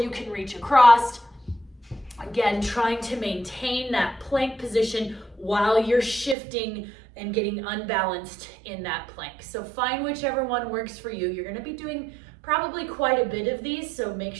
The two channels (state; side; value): drops out; left; at 6.4 s